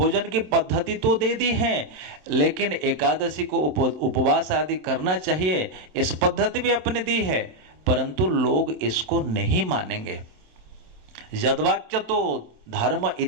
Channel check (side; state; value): left; late; 27 ms